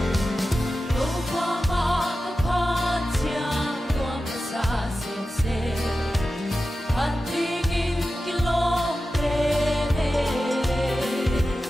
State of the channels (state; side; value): normal; both; correlation 0.93